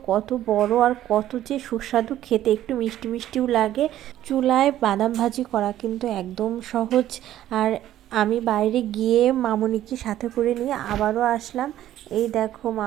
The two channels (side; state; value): left; quieter; 12.8 dB